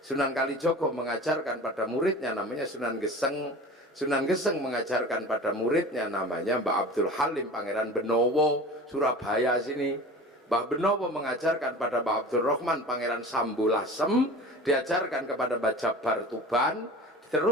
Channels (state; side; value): normal; both; correlation 0.37